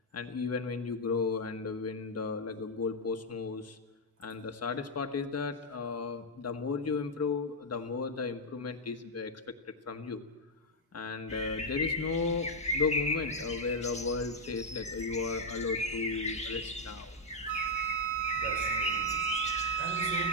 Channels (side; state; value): both; normal; correlation -0.01